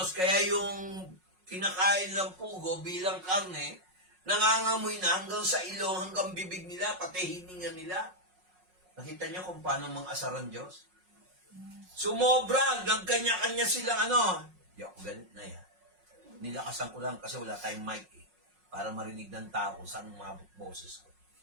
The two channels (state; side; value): late; left; 5.5 ms